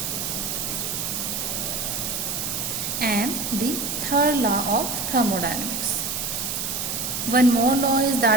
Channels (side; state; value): right; noise; hiss, 2 dB below the sound